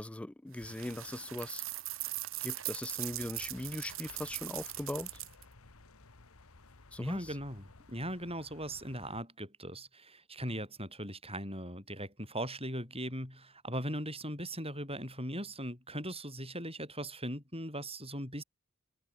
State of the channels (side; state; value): both; normal; correlation 0.55